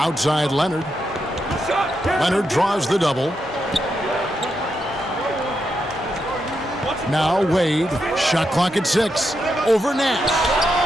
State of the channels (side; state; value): both; normal; correlation 0.84